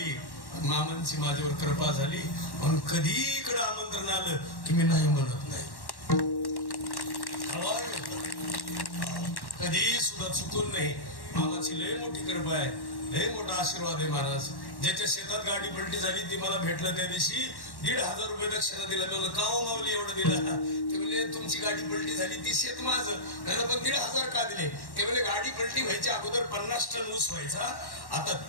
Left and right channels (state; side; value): late; right; 1.1 ms